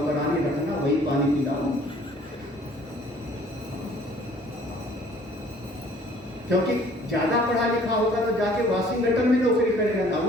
रखना, वही पानी पिलाओ। क्योंकि ज्यादा पढ़ा लिखा होगा तो जाके वाशिंगटन में नौकरी करेगा ना,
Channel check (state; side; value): normal; both; correlation 0.55